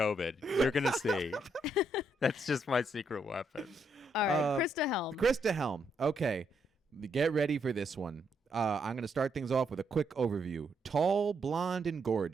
You're going to see. That's just my secret weapon. All right, Christa Helm. Christa Helm. Okay, get ready for this one. I'm going to start things off with a quick overview. Tall, blonde, and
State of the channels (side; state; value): both; normal; correlation 0.76